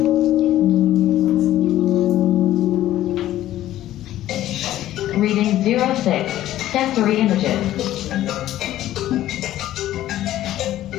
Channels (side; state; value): right; quieter; 13.6 dB